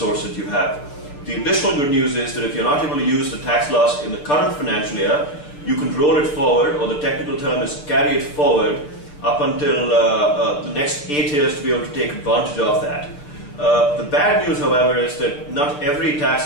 that you have. The additional good news is that if you're not able to use the tax loss in the current financial year, you can roll it forward, or the technical term is carry it forward up until the next 8 years to be able to take advantage of that. The bad news, however, is that not every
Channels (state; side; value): late; right; 6.8 ms